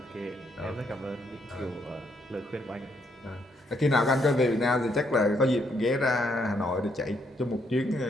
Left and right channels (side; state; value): both; normal; correlation 0.73